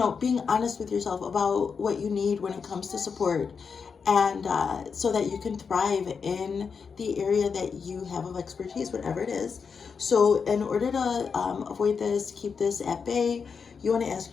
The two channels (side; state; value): right; quieter; 5.8 dB